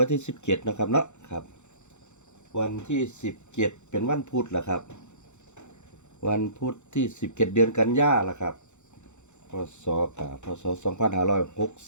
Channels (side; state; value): right; late; 0.83 ms